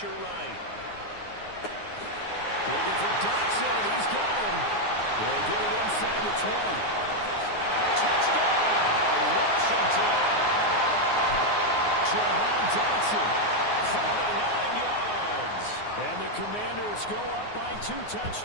right. Looking for Dotson. He's got him. They'll get it inside the 20. Touchdown, Washington. Jahan Dotson, 49 yards. And the Commanders go up by 2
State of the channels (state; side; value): late; right; 9.6 ms